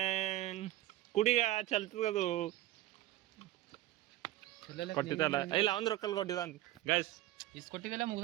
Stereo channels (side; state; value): left; quieter; 15.5 dB